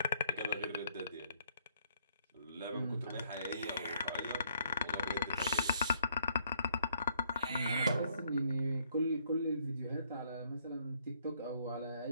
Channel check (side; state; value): both; inverted; correlation -0.68